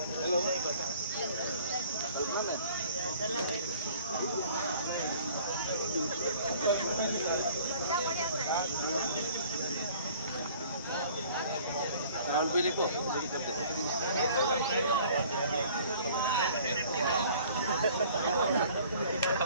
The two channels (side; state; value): both; inverted; correlation -0.52